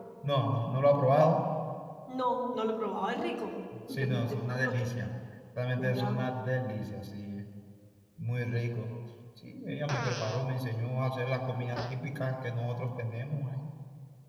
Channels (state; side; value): identical; both; correlation 1.00